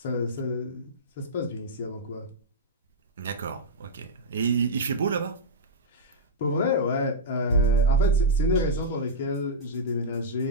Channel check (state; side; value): normal; both; correlation -0.09